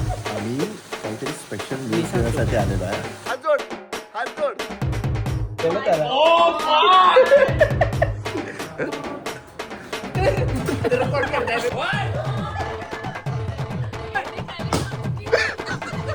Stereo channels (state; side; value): identical; both; correlation 1.00